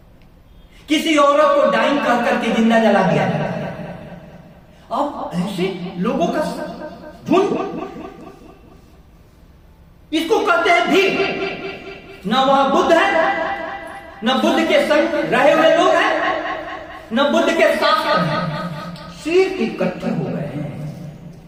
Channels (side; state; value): both; identical; correlation 1.00